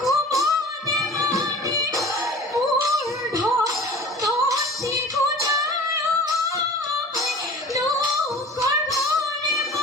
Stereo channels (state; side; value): normal; both; correlation 0.42